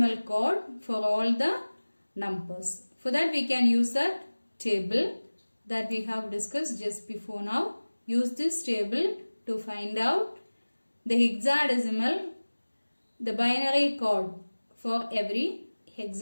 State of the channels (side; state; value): both; inverted; correlation -1.00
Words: code for all the numbers. For that we can use that table that we have discussed just before now. Use this table to find out the hexadecimal, the binary code for every